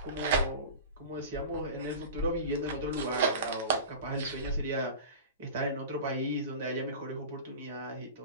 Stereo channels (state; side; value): inverted; both; correlation -0.32